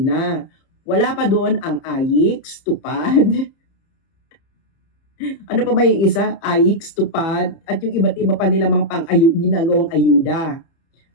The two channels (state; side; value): late; right; 30 ms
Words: Wala pa doon ang AIX, TUPAD, ano pa ba yung isa? AIX, TUPAD, at yung iba't iba pa nila mga ginagawang ayuda.